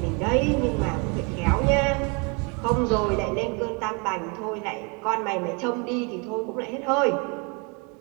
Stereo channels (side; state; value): left; quieter; 32.3 dB